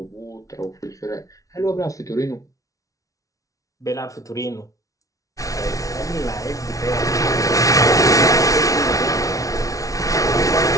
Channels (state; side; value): late; right; 0.17 ms